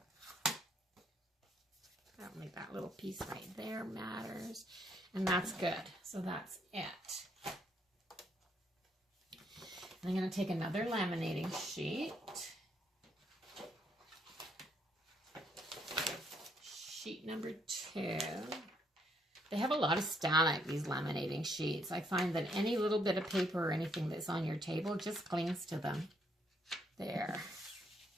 don't think that little piece right there matters. And that's good. So that's it. And I'm going to take another laminating sheet. Sheet number 2. They have a lot of static, these laminating sheets. I find that any little bit of paper or anything that's on your table just clings to them. There.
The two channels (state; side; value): normal; both; correlation 0.72